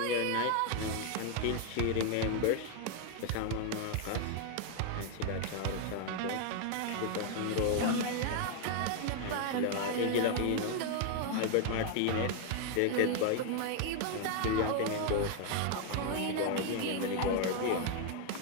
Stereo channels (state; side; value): different; both; correlation 0.00